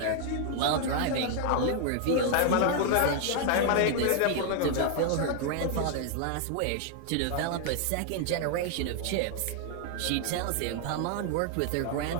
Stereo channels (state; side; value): different; both; correlation 0.00